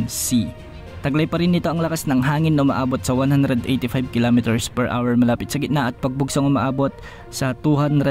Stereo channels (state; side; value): identical; both; correlation 1.00